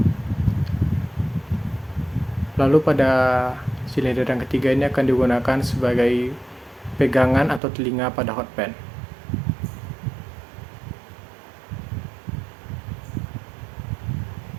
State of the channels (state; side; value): drops out; left; at 7.6 s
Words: Lalu pada silinder yang ketiga ini akan digunakan sebagai pegangan atau telinga pada hot pan.